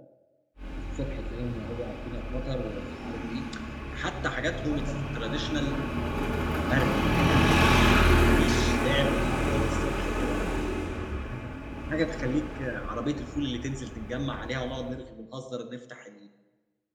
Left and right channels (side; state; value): both; identical; correlation 1.00